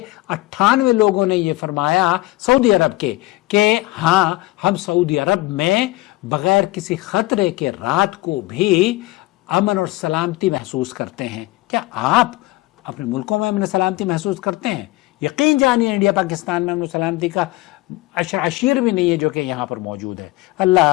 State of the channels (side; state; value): right; quieter; 19.1 dB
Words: 98 لوگوں نے یہ فرمایا سعودی عرب کے کہ ہاں ہم سعودی عرب میں بغیر کسی خطرے کے رات کو بھی امن اور سلامتی محسوس کرتے ہیں۔ کیا آپ اپنے ملکوں میں امن و سلامتی محسوس کرتے ہیں؟ یقین جانیے انڈیا پاکستان میں امن و سلامتی کا عشیر بھی نہیں ہے جو کہ یہاں پر موجود ہے۔